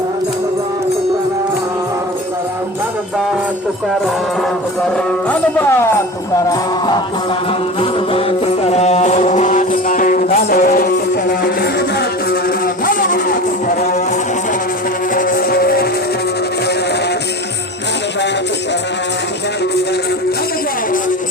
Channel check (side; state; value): both; normal; correlation 0.32